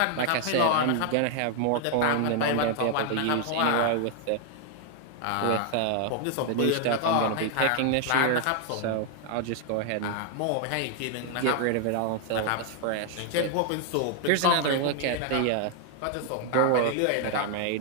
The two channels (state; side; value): different; both; correlation 0.00